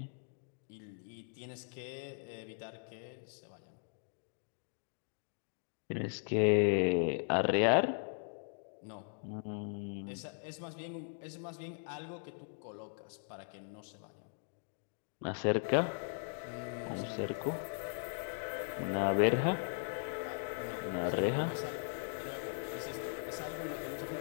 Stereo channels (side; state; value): right; silent; digital silence